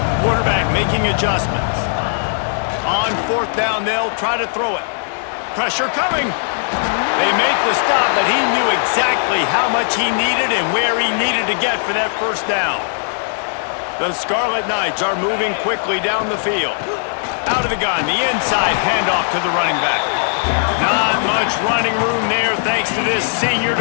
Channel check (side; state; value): right; silent; 60 dB below the other